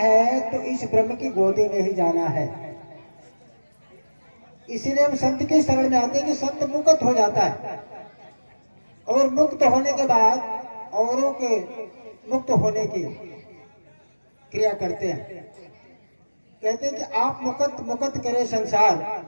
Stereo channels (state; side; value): inverted; both; correlation -1.00